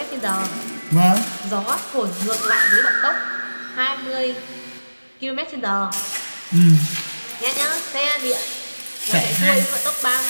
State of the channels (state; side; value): inverted; both; correlation -1.00